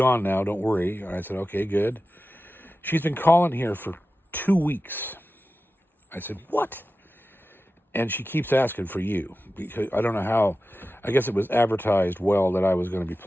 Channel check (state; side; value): normal; both; correlation 0.94